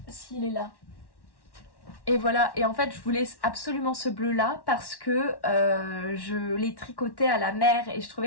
S'il est là. Et voilà, et en fait je voulais absolument ce bleu là parce que je l'ai tricoté à la mer et je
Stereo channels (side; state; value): right; late; 1.1 ms